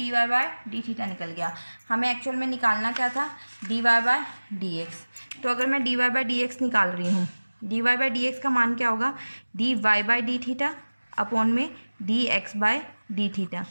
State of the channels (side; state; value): both; inverted; correlation -1.00